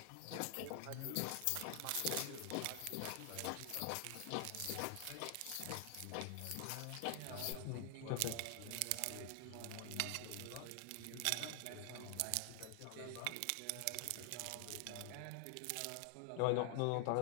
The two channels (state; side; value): different; both; correlation 0.00